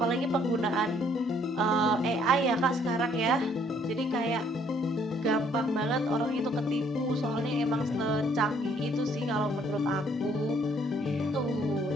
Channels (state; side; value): normal; both; correlation 0.64